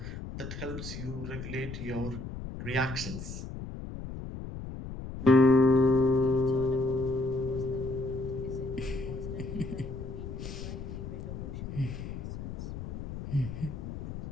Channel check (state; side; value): noise; left; rumble, 8 dB below the sound